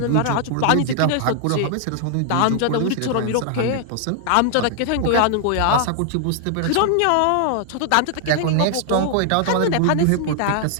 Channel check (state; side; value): different; both; correlation 0.00